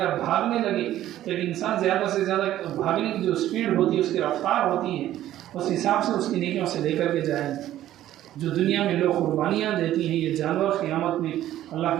بھاگنے لگے تو ایک انسان زیادہ سے زیادہ بھاگنے کی جو اسپیڈ ہوتی ہے، اس کی رفتار ہوتی ہے، اس حساب سے اس کی نیکیوں سے لے کر کے جائیں گے۔ جو دنیا میں لوگ قربانیاں دیتی ہیں یہ جانور قیامت میں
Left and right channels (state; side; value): quieter; left; 13.1 dB